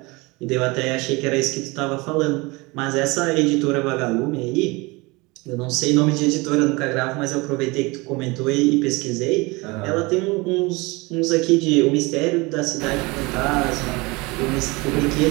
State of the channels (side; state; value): left; quieter; 24.6 dB